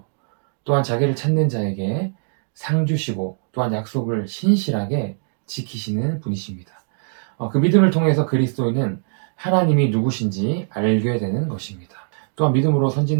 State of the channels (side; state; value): left; silent; digital silence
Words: 또한 자기를 찾는 자에게 상 주시고 또한 약속을 신실하게 지키시는 분이십니다. 그 믿음을 통해서 그리스도인은 하나님이 누구신지 알게 되는 것입니다. 또한 믿음으로